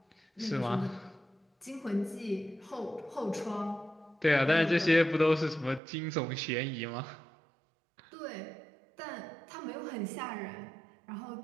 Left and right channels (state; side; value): drops out; left; at 5.8 s